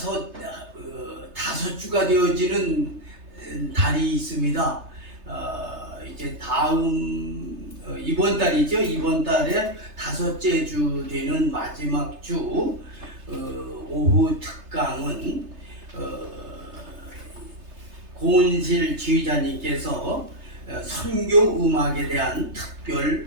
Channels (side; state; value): left; late; 3.3 ms